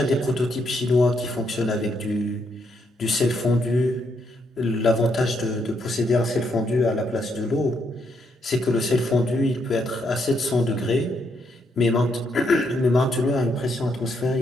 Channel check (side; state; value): both; normal; correlation 0.76